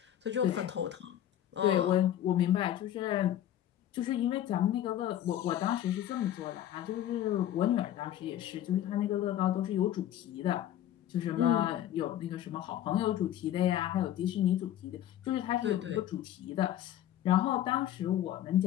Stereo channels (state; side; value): quieter; right; 11.8 dB